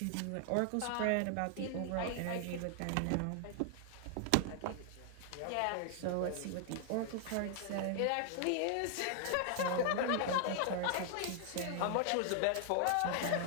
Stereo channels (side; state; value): both; different; correlation 0.00